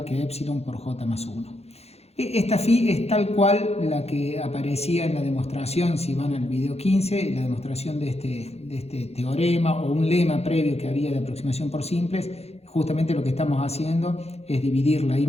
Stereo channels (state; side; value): late; right; 0.30 ms